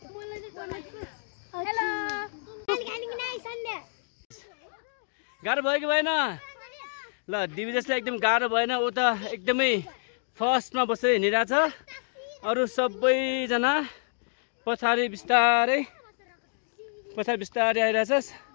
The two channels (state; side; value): silent; right; digital silence